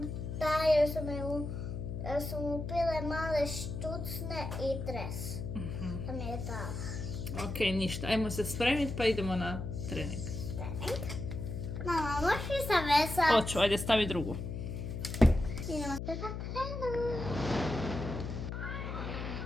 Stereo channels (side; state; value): left; noise; hum, 5 dB below the sound